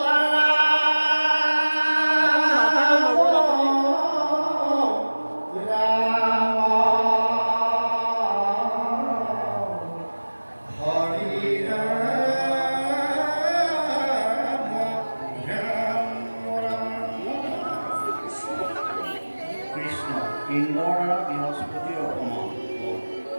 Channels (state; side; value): inverted; both; correlation -1.00